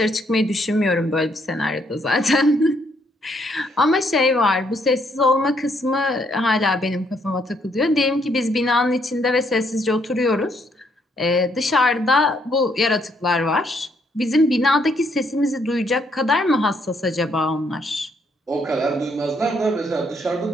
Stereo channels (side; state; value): both; normal; correlation 0.71